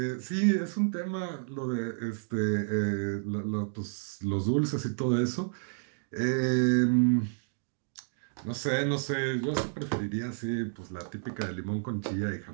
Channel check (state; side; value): silent; left; digital silence